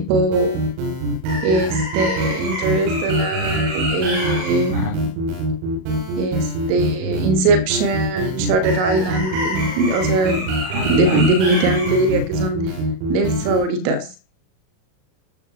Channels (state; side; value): late; left; 37 ms